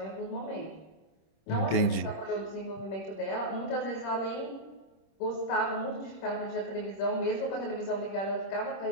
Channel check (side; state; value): right; late; 26 ms